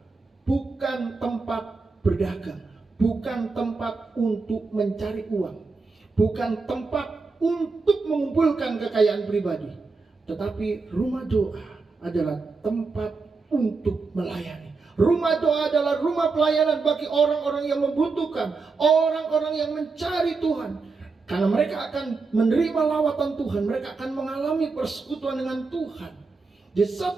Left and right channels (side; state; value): left; quieter; 4.2 dB